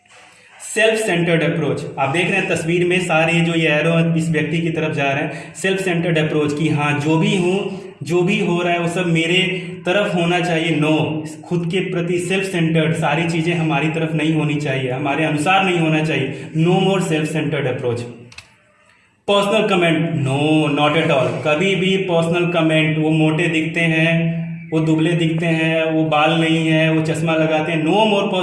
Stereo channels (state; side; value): identical; both; correlation 1.00